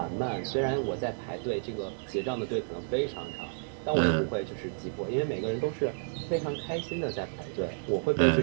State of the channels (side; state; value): left; silent; 57 dB below the other